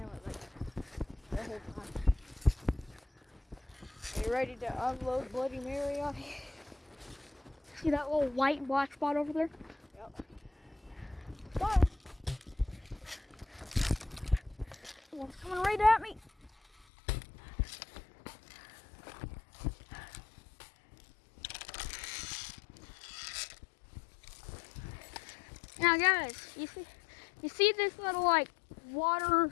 like the whole time. Are you ready to unload Bloody Mary on you? See that little white and black spot over there? Yep. Fire! One's coming right at me. Now guys, you see this little like water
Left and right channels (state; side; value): drops out; right; at 16.9 s